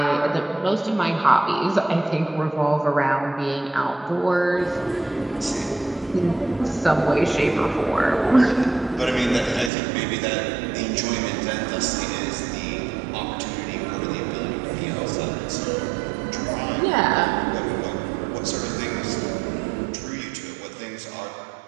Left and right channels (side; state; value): left; drops out; at 9.7 s